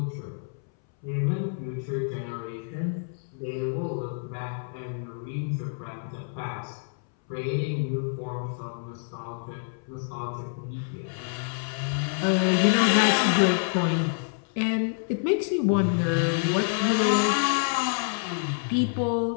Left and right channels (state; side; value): silent; right; 60 dB below the other